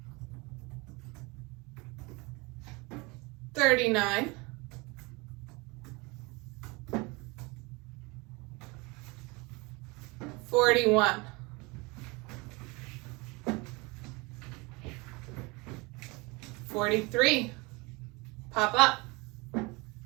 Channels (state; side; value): quieter; left; 26.3 dB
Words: 39. 41. 43. Pop up.